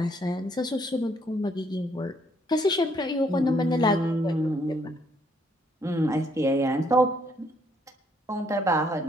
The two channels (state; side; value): normal; both; correlation 0.69